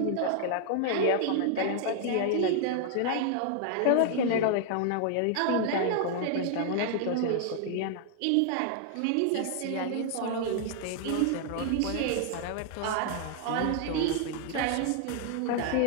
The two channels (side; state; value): both; different; correlation 0.00